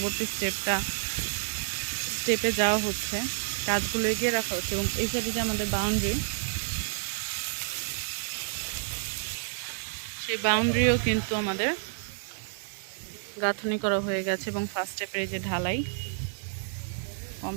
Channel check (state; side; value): silent; left; digital silence